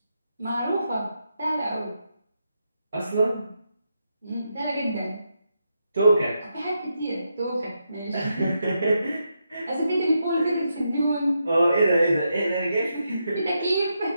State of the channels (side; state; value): both; inverted; correlation -0.83